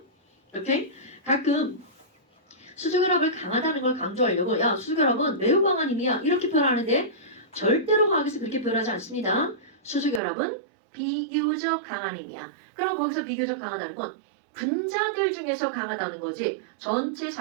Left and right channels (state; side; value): drops out; left; at 10.2 s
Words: 오케이? 가끔 수소결합을 강하다는 걸 강조하려고 야 수소결합은 매우 강한 힘이야 이렇게 표현하는데 절대로 화학에서 그렇게 표현하지 않습니다. 수소결합은 비교적 강한 힘이야. 그럼 거기서 비교적 강하다는 건 분자들 중에서 강하다는 거지 전체